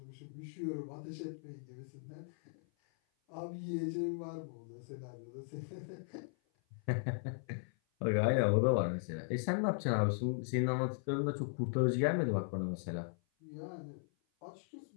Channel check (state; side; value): silent; right; 53 dB below the other